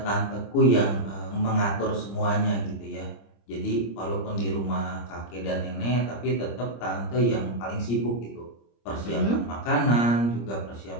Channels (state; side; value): late; right; 25 ms